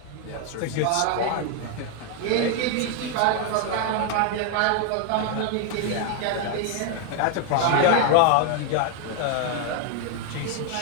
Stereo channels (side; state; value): both; different; correlation 0.00